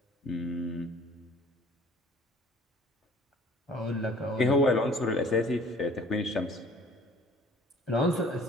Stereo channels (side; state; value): both; normal; correlation 0.51